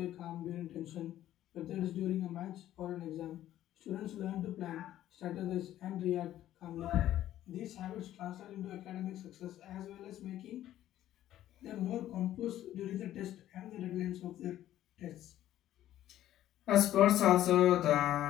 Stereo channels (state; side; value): quieter; right; 12.9 dB